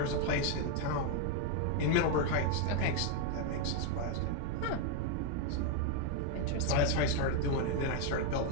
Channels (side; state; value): both; different; correlation 0.01